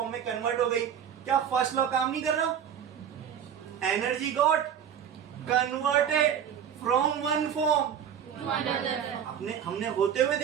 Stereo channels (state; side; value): quieter; left; 8.6 dB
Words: में कन्वर्ट हो गई। क्या फर्स्ट लॉ काम नहीं कर रहा? Energy got converted from one form to another. हमने होते हुए